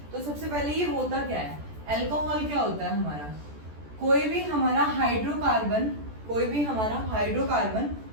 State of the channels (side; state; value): left; late; 14 ms